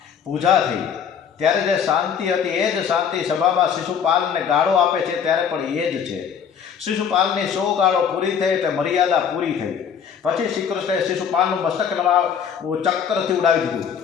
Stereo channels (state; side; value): quieter; right; 7.5 dB